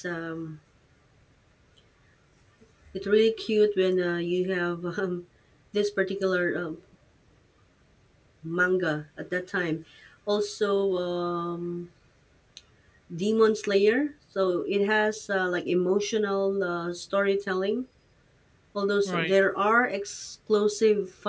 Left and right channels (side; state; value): both; identical; correlation 1.00